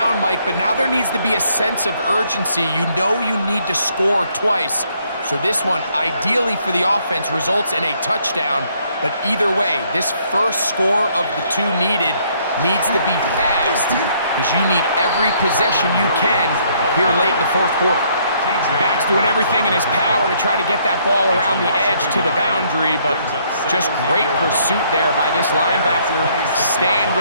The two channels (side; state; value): both; inverted; correlation -0.67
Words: Mike, but now there needs to be a sense of urgency. You know you need to score twice. So this one, ideally for the offense, results in a touchdown. But either way, this first score of the two needed needs to be fast because you need every possession you can here late in the fourth quarter. Back's doing everything in his power to try to get that ball around the edge to the boundary, but just great pursuit there by this linebacker, staying